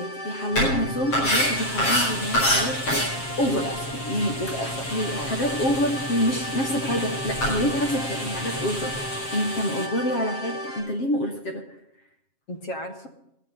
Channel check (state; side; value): late; right; 7.5 ms